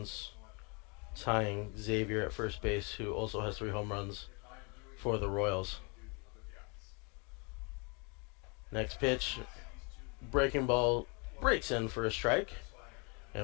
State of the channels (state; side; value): quieter; right; 31.7 dB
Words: tying Xavier at first base, who also has 3 home runs for the Royals. Next pitch, breaking ball breaks in for a strike,